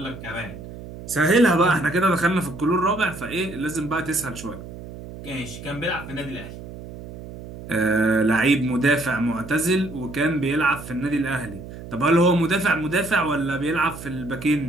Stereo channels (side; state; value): right; noise; hum, 13 dB below the sound